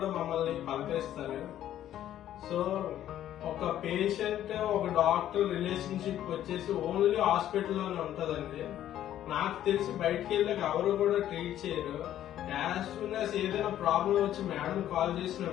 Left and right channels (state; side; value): quieter; right; 11.8 dB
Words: మమ్మల్ని పలకరిస్తారు. సో ఒక పేషెంట్ ఒక డాక్టర్ రిలేషన్షిప్ వచ్చేసి ఓన్లీ హాస్పిటల్లోనే ఉంటదండి. నాకు తెలిసి బయటకు వెళ్ళాక ఎవరు కూడా ట్రీట్ చేయరు. యాజ్ సూన్ యాజ్ ఏదైనా ప్రాబ్లం వచ్చి మేడం కాల్ చేసిన